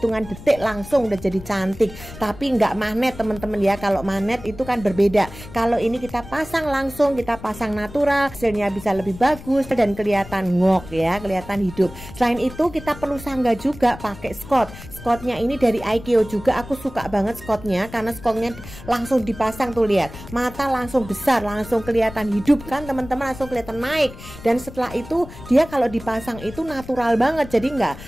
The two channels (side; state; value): left; noise; rumble, 15 dB below the sound